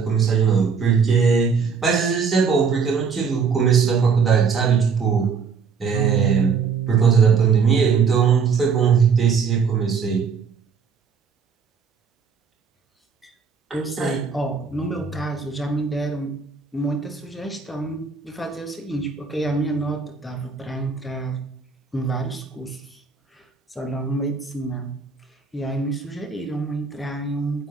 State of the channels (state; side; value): quieter; left; 5.7 dB